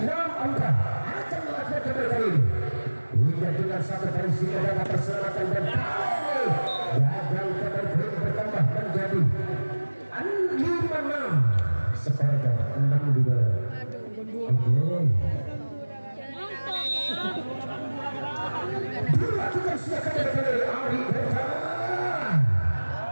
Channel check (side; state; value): both; inverted; correlation -1.00